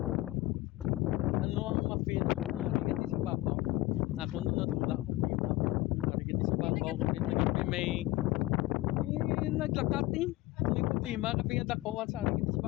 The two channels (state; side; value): quieter; right; 18.3 dB